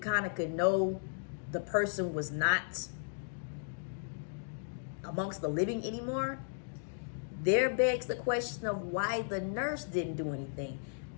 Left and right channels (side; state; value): right; silent; digital silence